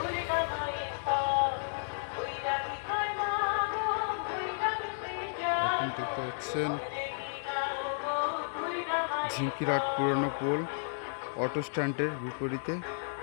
এখন দেখতে পাচ্ছেন ঝিঙ্কিরাট পুরনো পোল অটো স্ট্যান্ডের বিপরীতে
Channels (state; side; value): silent; right; 56 dB below the other